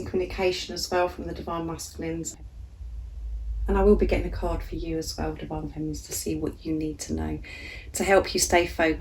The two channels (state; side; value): identical; both; correlation 1.00